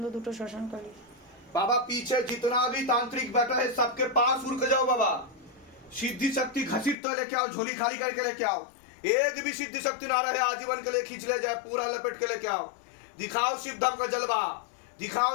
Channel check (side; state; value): right; drops out; at 7.0 s